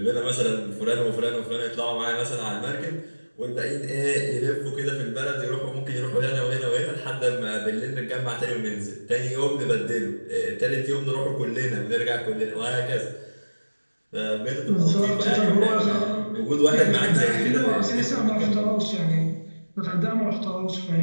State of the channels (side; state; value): both; inverted; correlation -1.00